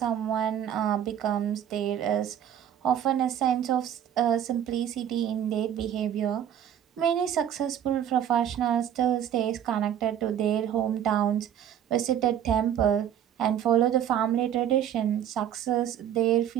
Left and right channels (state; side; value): quieter; left; 9.9 dB